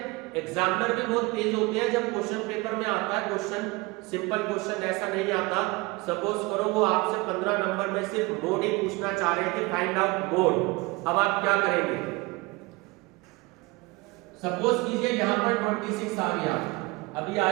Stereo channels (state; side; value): quieter; left; 23.8 dB